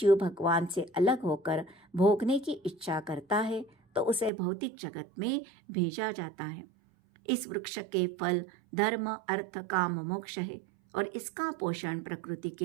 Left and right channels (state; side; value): drops out; left; at 4.3 s